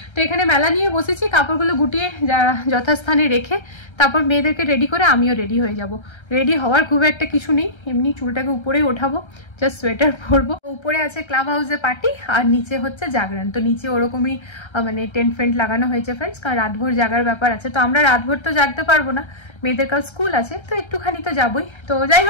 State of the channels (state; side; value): late; right; 1.3 ms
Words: তো এখানে মেলা নিয়ে বসেছি, কাপড়গুলো গুটিয়ে যথাস্থানে রেখে তারপর মেয়েদেরকে রেডি করে আমিও রেডি হয়ে যাব। রেডি হওয়ার খুব একটা কিছু নেই, এমনি চুলটাকে উপরেই ওঠাবো, জাস্ট সোয়েটার পরবো। উপরে আছে ক্লাব হাউসে পার্টি, আর নিচে হচ্ছে জাগরণ। তো নিচে ওরকমই মানে টেন্ট ফেন্ট লাগানো হয়েছে ফ্রেন্ডস, কারণ রাতভর জাগার ব্যাপার আছে। তো আমরা রাতভর তো জাগতে পারবো না, মেয়েদের কাল স্কুল আছে, তো একটুখানি তো যাবোই। তো যাই